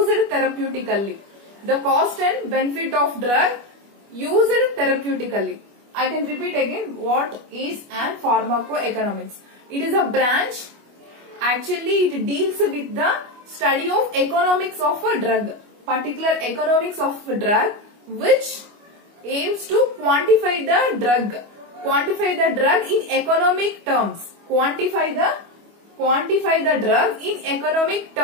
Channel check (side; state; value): left; late; 25 ms